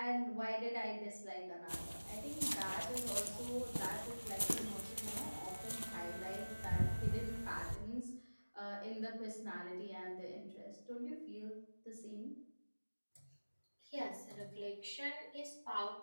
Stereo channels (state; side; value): inverted; both; correlation -1.00